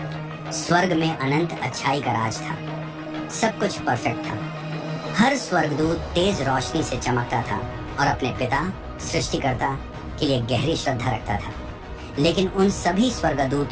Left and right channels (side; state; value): both; identical; correlation 1.00